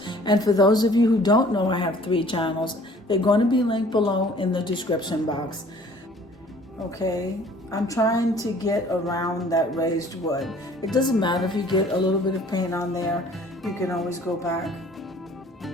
And for those of you who don't know, I have 3 channels. They're going to be linked below in the description box. Okay, I'm trying to get around that raised wood. It doesn't matter if you get a little bit of paint on there. You can always go back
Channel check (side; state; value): both; normal; correlation 0.53